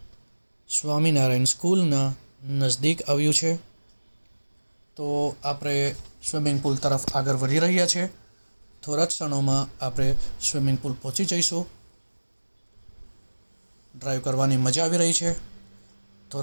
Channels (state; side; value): inverted; both; correlation -1.00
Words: સ્વામિનારાયણ સ્કૂલના નજદીક આવ્યું છે. તો આપણે સ્વિમિંગ પુલ તરફ આગળ વધી રહ્યા છે. થોડા જ ક્ષણોમાં આપણે સ્વિમિંગ પુલ પહોંચી જઈશું. ડ્રાઈવ કરવાની મજા આવી રહી છે.